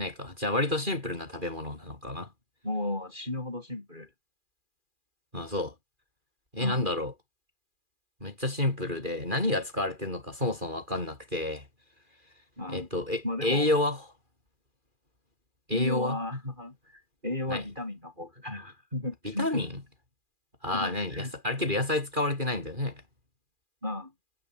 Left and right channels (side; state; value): left; late; 2.4 ms